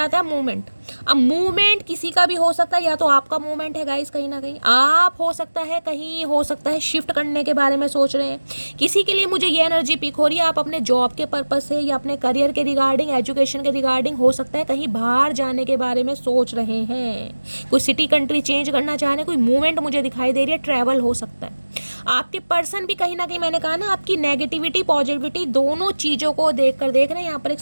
है मूवमेंट। अब मूवमेंट किसी का भी हो सकता है, या तो आपका मूवमेंट है गाइस, कहीं ना कहीं आप हो सकता है, कहीं हो सकता है शिफ्ट करने के बारे में सोच रहे हैं। किसी के लिए मुझे ये एनर्जी पिक हो रही है, आप अपने जॉब के पर्पस से या अपने करियर के रिगार्डिंग, एजुकेशन के रिगार्डिंग, हो सकता है कहीं बाहर जाने के बारे में सोच रहे हैं, कोई सिटी कंट्री चेंज करना चाह रहे हैं, कोई मूवमेंट मुझे दिखाई दे रही है, ट्रैवल हो सकता है। आपके पर्सन भी कहीं ना कहीं, मैंने कहा ना, आपकी नेगेटिविटी पॉजिटिविटी दोनों चीज़ों को देख रहे हैं। यहाँ पर एक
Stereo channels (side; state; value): both; inverted; correlation -1.00